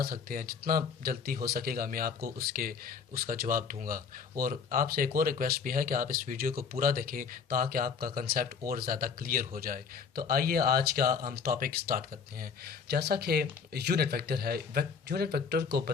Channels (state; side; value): quieter; right; 6.0 dB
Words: सकते हैं। जितना जल्दी हो सकेगा मैं आपको उसका जवाब दूंगा। और आपसे एक और रिक्वेस्ट भी है कि आप इस वीडियो को पूरा देखें ताकि आपका कंसेप्ट और ज़्यादा क्लियर हो जाए। तो आइए आज का हम टॉपिक स्टार्ट करते हैं। जैसा कि यूनिट वेक्टर है, यूनिट वेक्टर को